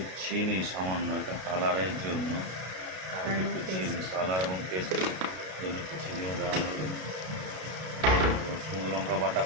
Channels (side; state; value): left; late; 32 ms